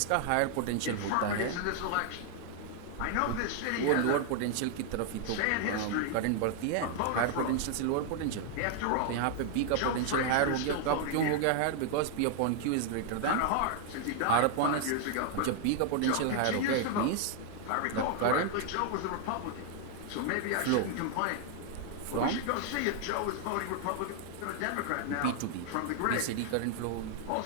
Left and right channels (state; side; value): different; both; correlation 0.00